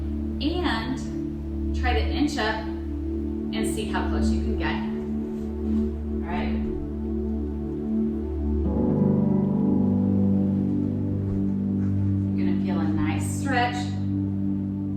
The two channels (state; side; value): identical; both; correlation 1.00